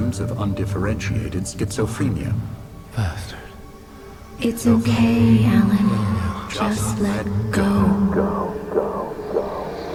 of undifferentiated schizophrenia. Bastard. It's okay, Alan. Just let go.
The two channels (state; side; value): identical; both; correlation 1.00